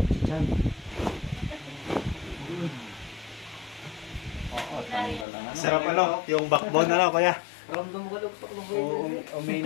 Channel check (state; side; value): drops out; right; at 5.2 s